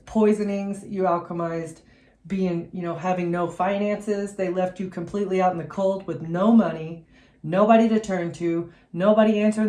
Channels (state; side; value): identical; both; correlation 1.00